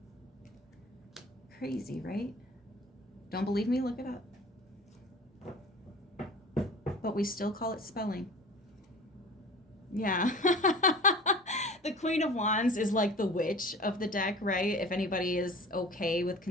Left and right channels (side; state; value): both; normal; correlation 0.41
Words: Crazy, right? Don't believe me? Look it up. But we still call it spelling. Yeah. The Queen of Wands is like the witch of the deck, right? If anybody is okay with